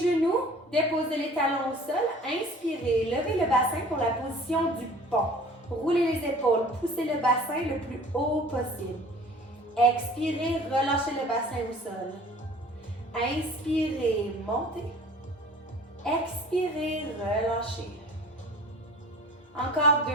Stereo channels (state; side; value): normal; both; correlation 0.47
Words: déposez les talons au sol, inspirez, levez le bassin pour la position du pont. Roulez les épaules, poussez le bassin le plus haut possible. Expirez, relâchez le bassin au sol. Inspirez, montez. Expirez, relâchez. Encore